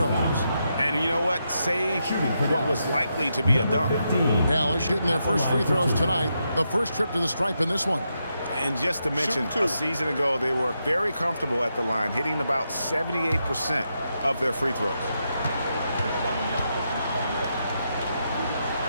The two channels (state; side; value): inverted; both; correlation -0.83